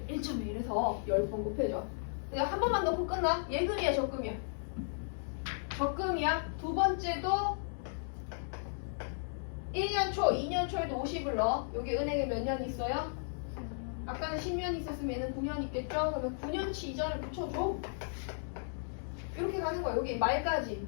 1.1 해서 10번 곱해줘. 그냥 한 번만 넣고 끝나? 예금이야, 적금이야? 적금이야. 두 번째도 1년 초, 2년 초에도 50을 넣어. 여기 은행에 몇 년 있어요? 아까는 10년 있었으면 얘는 9년 있겠죠? 그러면 9년치 이자를 붙여줘. 이렇게 가는 거야. 여기 말까지,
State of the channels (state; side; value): silent; right; digital silence